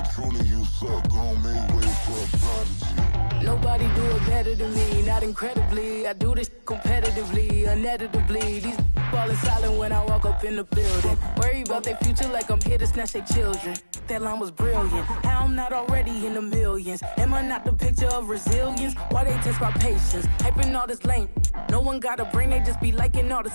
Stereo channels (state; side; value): inverted; both; correlation -1.00